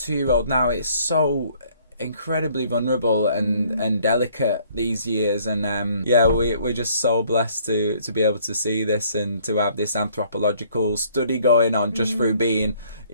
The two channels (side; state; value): both; inverted; correlation -0.61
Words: now. It's so incredibly vulnerable and delicate these years, and we're just so blessed to be able to see this and to have this anthropological study going on just through being,